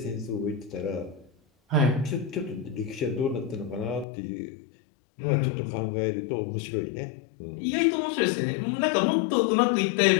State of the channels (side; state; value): right; drops out; at 4.0 s